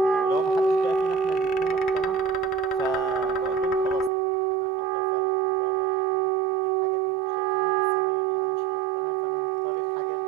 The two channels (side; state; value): left; drops out; at 4.1 s